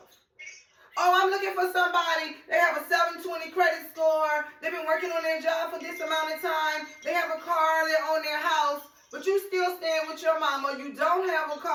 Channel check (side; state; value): both; identical; correlation 1.00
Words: Oh, I'm looking for somebody. They have a 720 credit score. They've been working on their job for this amount of time. They have a car. They own their house. But you still staying with your mama. You don't have a